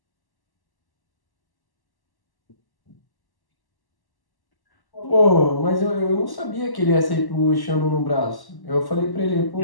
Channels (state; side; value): late; right; 1.1 ms